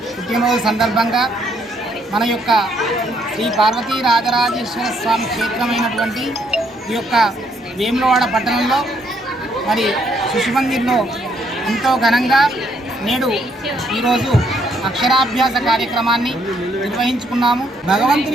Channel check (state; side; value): normal; both; correlation 0.70